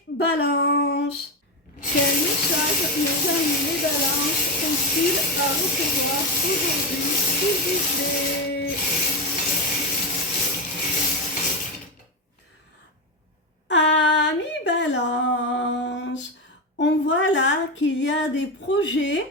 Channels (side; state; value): both; normal; correlation 0.14